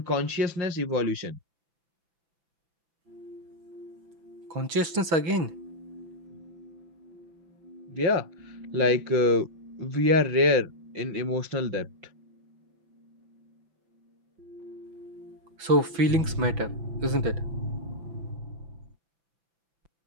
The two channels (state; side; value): late; left; 6.1 ms